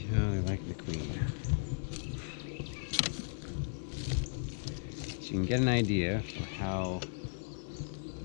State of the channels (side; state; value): right; silent; 54 dB below the other